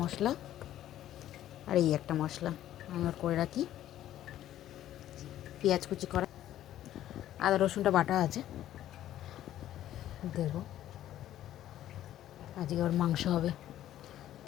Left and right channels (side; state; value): right; quieter; 12.6 dB